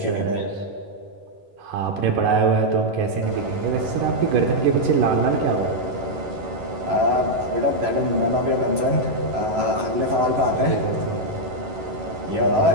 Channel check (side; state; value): left; late; 11 ms